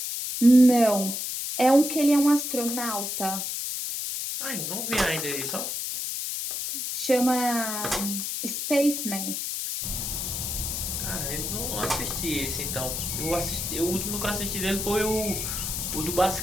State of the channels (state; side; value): noise; left; hiss, 3 dB below the sound